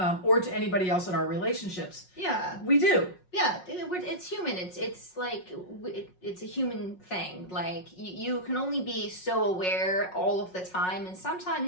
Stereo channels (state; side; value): late; right; 5.5 ms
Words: Or to anybody else in our relationships. Yeah. We do. Yeah, it's human. It's like it's a human thing. Like you can only be so aware all of the time, and